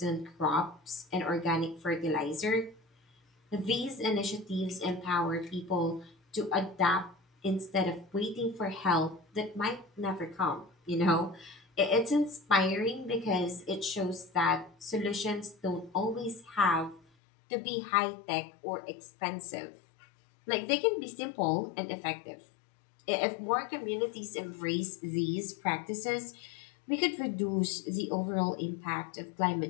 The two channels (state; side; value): drops out; right; at 17.0 s